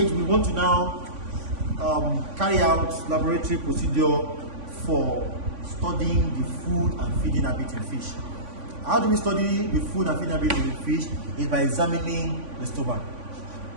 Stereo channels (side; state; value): left; late; 3.5 ms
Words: we want to now carry out laboratory procedure for studying the food and feeding habit in fish. How do we study the food and feeding habit in fish? Is by examining the stomach.